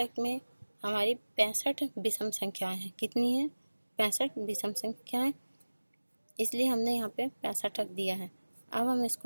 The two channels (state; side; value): inverted; both; correlation -1.00